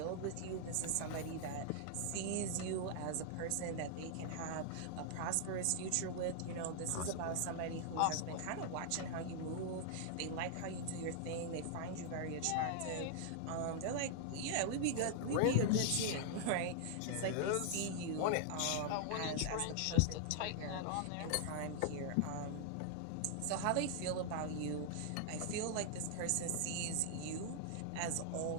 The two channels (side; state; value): both; different; correlation -0.01